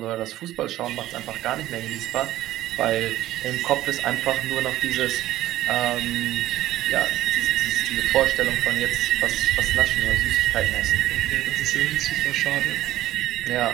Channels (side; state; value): left; quieter; 14.5 dB